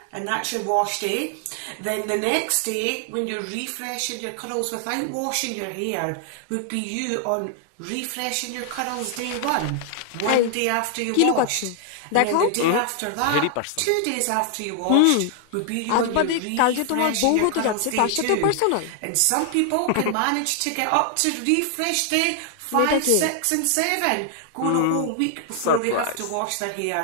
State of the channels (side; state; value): both; different; correlation 0.00